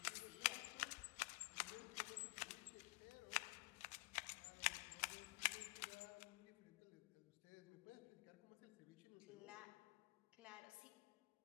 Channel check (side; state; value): right; quieter; 26.0 dB